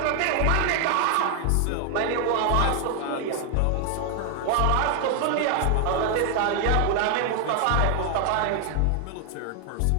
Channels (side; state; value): both; different; correlation 0.00